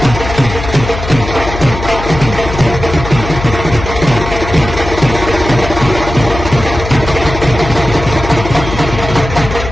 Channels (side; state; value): left; noise; hum, 8 dB below the sound